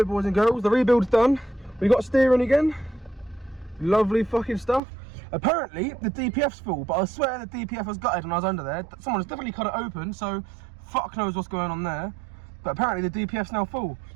boys and girls, the rebuild's done. We got steering again. Lovely fucking stuff. Apparently, the DPF's full, but I swear the DPF was gutted when I was under there. Someone's definitely cut it open, so fuck knows what's going on there. But apparently the DPF's now full.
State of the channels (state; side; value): drops out; left; at 4.8 s